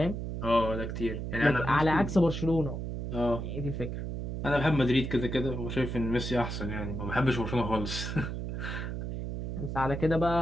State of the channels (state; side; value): noise; right; hum, 4 dB below the sound